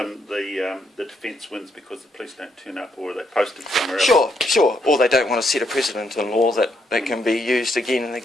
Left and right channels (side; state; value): both; normal; correlation 0.76